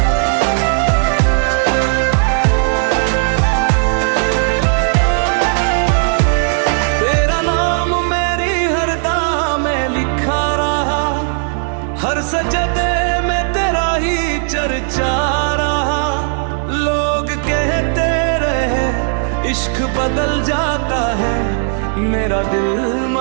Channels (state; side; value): silent; left; 61 dB below the other